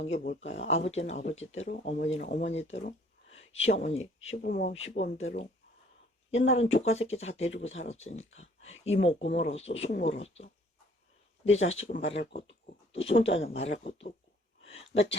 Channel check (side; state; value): both; normal; correlation 0.58